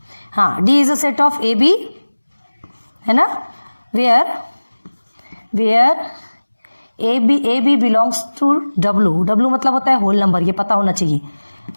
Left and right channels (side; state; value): both; inverted; correlation -1.00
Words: हाँ, D is a set of A B, है ना, where A B belongs to W मतलब होता है होल नंबर, ये पता होना चाहिए।